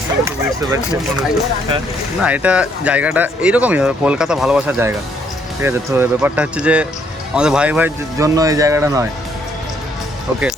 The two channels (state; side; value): normal; both; correlation 0.68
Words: বুঝতে পারছি না এটা জায়গাটা এইরকমই হবে, কলকাতা ভালোবাসার জায়গা, ঠিক আছে। তো ব্যাপারটা হচ্ছে যে আমাদের ভাই ভাই জন্য এই জায়গাটা নয়। ওকে,